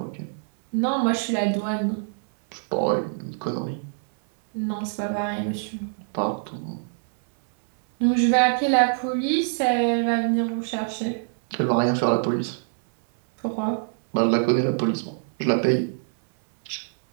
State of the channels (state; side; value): silent; left; 60 dB below the other